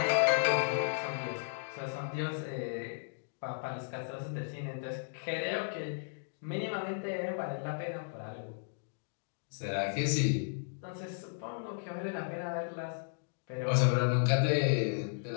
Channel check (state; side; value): silent; right; digital silence